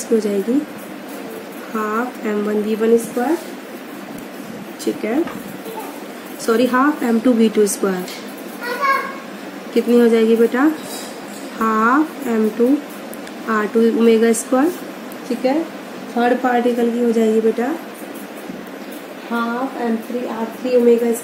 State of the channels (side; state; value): both; identical; correlation 1.00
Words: की हो जाएगी half m1 v1 square, ठीक है, sorry half m2 v2 square. कितनी हो जाएगी बेटा, half m2 r2 omega square, ठीक है। थर्ड पार्टिकल की हो जाएगी बेटा half m3 r3 omega